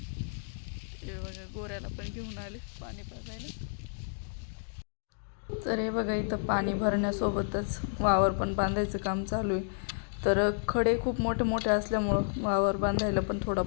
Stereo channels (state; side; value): silent; right; digital silence